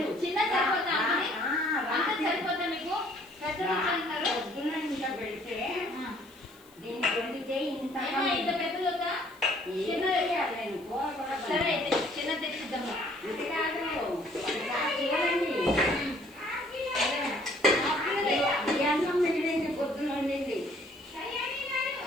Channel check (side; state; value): left; noise; hiss, 27 dB below the sound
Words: చిన్న సరిపోతా అంత సరిపోతా మీకు? పెద్దది అంటారు పొద్దున ఇంత పెడితే దీనికి వండితే ఇంత ఇంత పెద్దది వద్దా? చిన్నది సరే అయితే చిన్నది తెచ్చిద్దాము. ఇది కాదు చూడండి, ఈ అన్నం మిగిలింది పొద్దున వండింది.